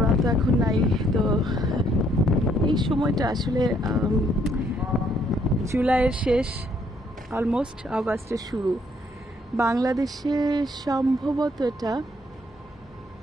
তো এখন নাই। তো এই সময়টা আসলে জুলাইয়ের শেষ, অলমোস্ট আগস্টের শুরু। বাংলাদেশে সম্ভবত এটা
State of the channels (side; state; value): both; normal; correlation 0.68